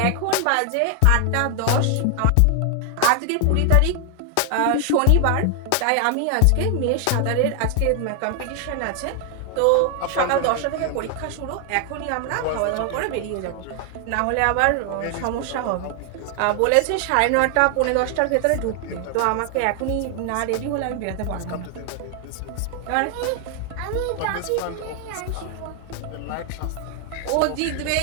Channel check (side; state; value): both; different; correlation 0.00